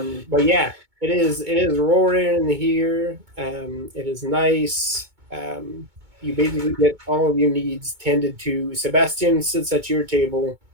yeah, it is roaring in here. It is nice. You basically get all of your needs tended to. Sebastian sits at your table,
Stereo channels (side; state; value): left; late; 2.2 ms